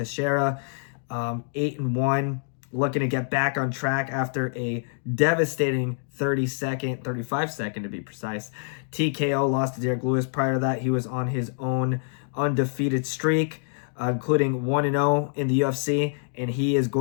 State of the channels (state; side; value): silent; right; digital silence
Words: 8-1. Looking to get back on track after a devastating 35 second to be precise, TKO loss to Diego Lopes. Prior to that, he was on his own undefeated streak, including 1-0 in the UFC, and he is